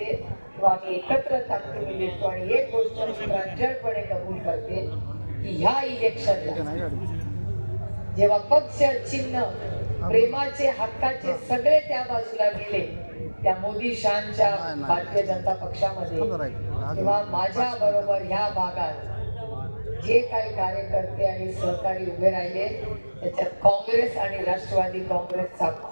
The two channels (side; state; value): both; inverted; correlation -1.00